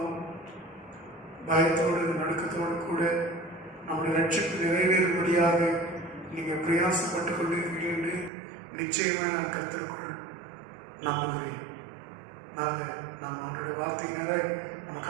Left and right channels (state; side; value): drops out; left; at 8.3 s